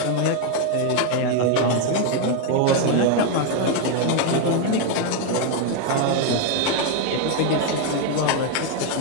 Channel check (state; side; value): different; both; correlation 0.01